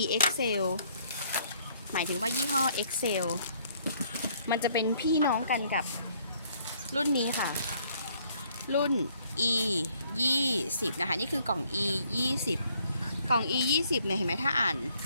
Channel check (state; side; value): inverted; both; correlation -0.65